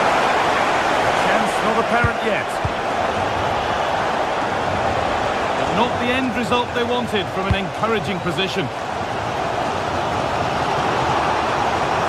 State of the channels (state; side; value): identical; both; correlation 1.00